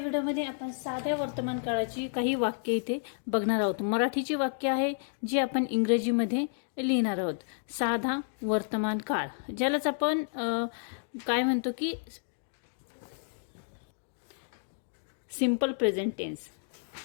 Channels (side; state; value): right; silent; digital silence